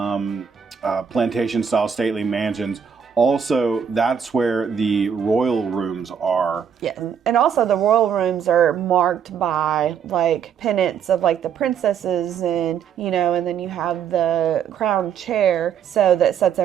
plantation style stately mansions. Also, that's where the royal rooms are. Yeah, and also the royal rooms are marked by like pennants of like the princesses and, you know, and then you have the crown chair so that sits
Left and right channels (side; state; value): left; quieter; 7.5 dB